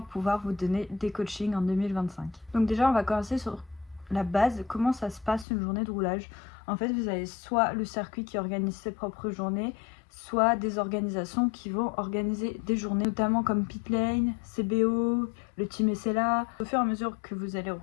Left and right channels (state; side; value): drops out; right; at 5.5 s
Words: pouvoir vous donner des coachings en 2025. Donc déjà, on va commencer sur la base, comment ça se passe une journée de roulage. En fait, vous avez soit le circuit qui organise ses propres journées, soit des organisations qui vont organiser des journées, notamment comme Pitlane, CBO, le team SLA. Au fur et à mesure que vous allez